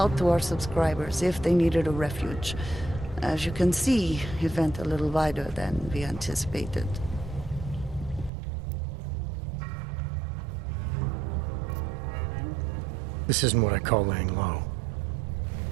to our subscribers if they needed a refuge. As you can see, it went a little wider than we anticipated. This isn't what I call laying low.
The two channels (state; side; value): drops out; left; at 8.3 s